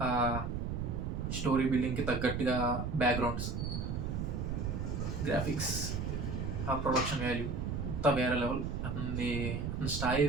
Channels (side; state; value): right; noise; rumble, 2 dB below the sound